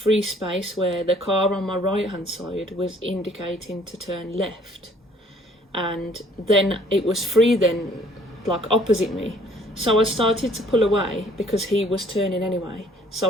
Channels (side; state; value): both; normal; correlation 0.59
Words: space where the car on my right hand side was indicating to turn left. And then it was free then, like opposite me. So I started to pull away because he was turning anyway.